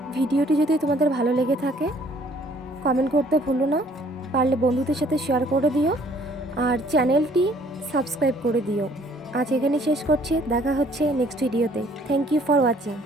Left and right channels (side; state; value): both; normal; correlation 0.59